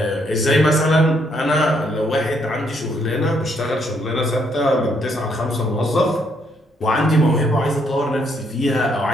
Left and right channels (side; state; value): both; normal; correlation 0.72